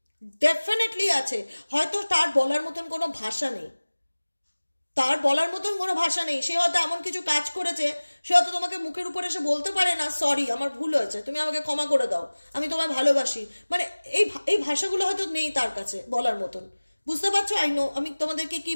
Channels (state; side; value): inverted; both; correlation -1.00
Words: ডেফিনেটলি আছে। হয়তো তার বলার মতন কোনো ভাষা নেই, তার বলার মতন কোনো ভাষা নেই, সে হয়তো এমন কিছু কাজ করেছে, সে হয়তো তোমাকে মুখের উপর এসে বলতে পারে না সরি আমার ভুল হয়েছে, তুমি আমাকে ক্ষমা করে দাও, আমি তোমায় ভালোবাসি, মানে এই ভাষাগুলো হয়তো নেই তার কাছে বলার মতন। বুঝতে পারছো? আই নো আমি তোমাদেরকে কি